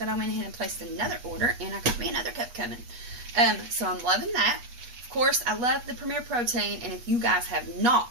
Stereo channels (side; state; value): left; late; 8.3 ms